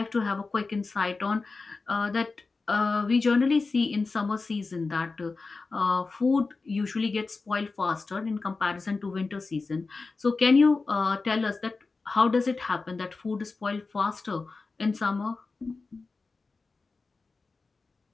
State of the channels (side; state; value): right; quieter; 4.0 dB